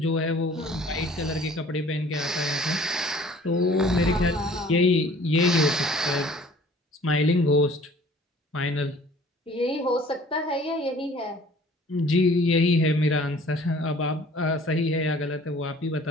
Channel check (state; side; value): normal; both; correlation 0.51